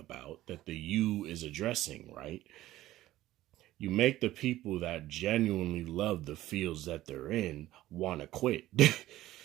that the you is addressing, right? You make the people that genuinely love the fields that they're in want to quit.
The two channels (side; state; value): left; quieter; 15.3 dB